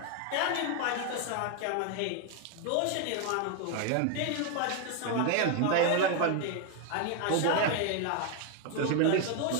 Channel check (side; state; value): both; different; correlation 0.01